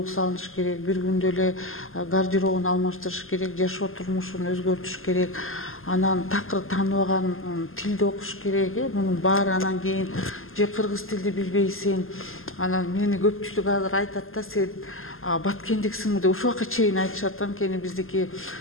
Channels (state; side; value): late; right; 0.60 ms